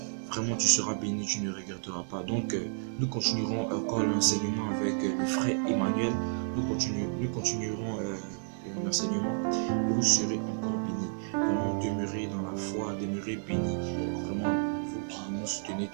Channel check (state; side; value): silent; left; digital silence